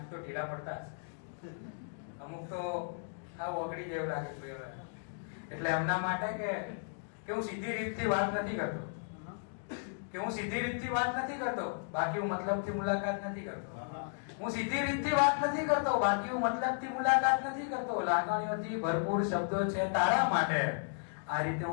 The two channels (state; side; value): silent; right; digital silence